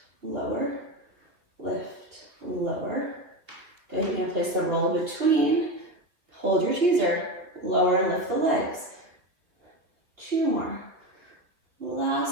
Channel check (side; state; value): left; late; 3.0 ms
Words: lower, lift, lower. Good, you're gonna place the roll between. Hold your teaser, lower and lift the legs. 2 more.